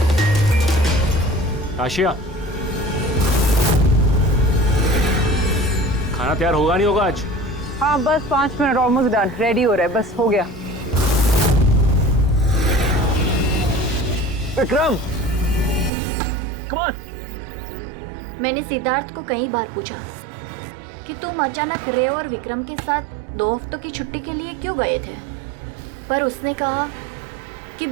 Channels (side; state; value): left; drops out; at 15.9 s